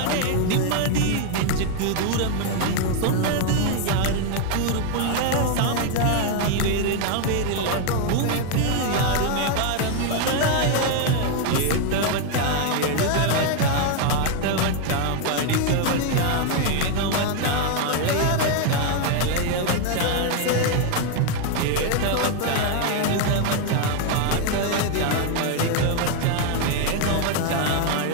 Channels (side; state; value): both; different; correlation 0.01